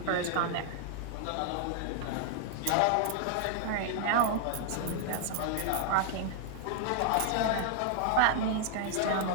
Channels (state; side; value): different; both; correlation 0.00